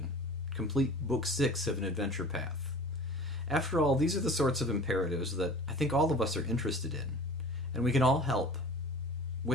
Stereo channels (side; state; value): both; normal; correlation 0.42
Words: complete Book 6 of an adventure path. After all, these are the sorts of imperatives that I think all of us are interested in, and we can all help